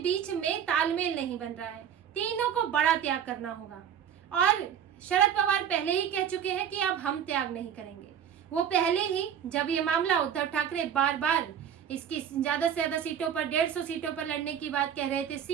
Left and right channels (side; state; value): left; quieter; 8.8 dB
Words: बीच में तालमेल नहीं बन रहा है, तीनों को बड़ा त्याग करना होगा। और शरद पवार पहले ही कह चुके हैं कि अब हम त्याग नहीं करेंगे। वो पहले ही, जब ये मामला उद्धव ठाकरे बार बार इसकी ज्यादा से ज्यादा सीटों पर, 150 सीटों पर लड़ने की बात कह रहे थे,